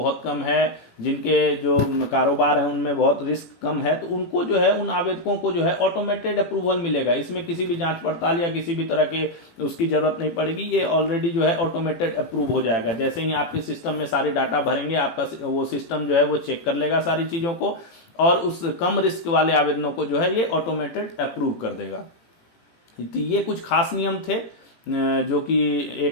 कम है, जिनके जो कारोबार है उनमें बहुत रिस्क कम है, तो उनको जो है, उन आवेदकों को जो है ऑटोमेटेड अप्रूवल मिलेगा। इसमें किसी भी जांच पड़ताल या किसी भी तरह के उसकी जरूरत नहीं पड़ेगी। ये ऑलरेडी जो है ऑटोमेटेड अप्रूव हो जाएगा। जैसे ही आपके सिस्टम में सारे डाटा भरेंगे, आपका वो सिस्टम जो है वो चेक कर लेगा सारी चीजों को, और उस कम रिस्क वाले आवेदनों को जो है ये ऑटोमेटेड अप्रूव कर देगा। तो ये कुछ खास नियम थे जो कि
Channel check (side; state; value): right; late; 18 ms